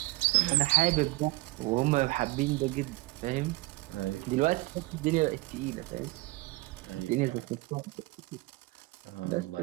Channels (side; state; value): left; quieter; 20.9 dB